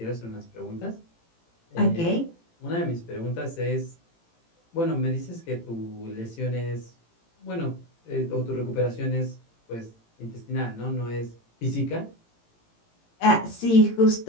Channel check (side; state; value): right; late; 18 ms